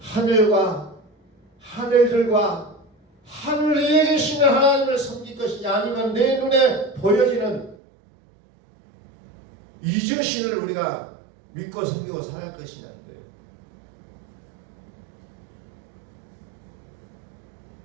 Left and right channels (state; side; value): drops out; left; at 7.8 s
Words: 하늘들과 하늘 위에 계시는 하나님을 섬길 것이냐, 아니면 내 눈에 보여지는 이 자신을 우리가 믿고 섬기고 살아갈 것이냐는 거예요.